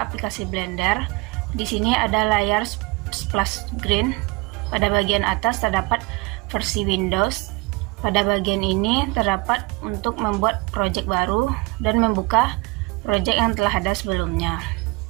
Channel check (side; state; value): left; quieter; 24.7 dB